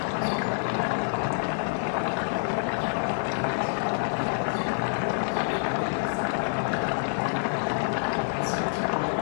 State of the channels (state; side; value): silent; right; 60 dB below the other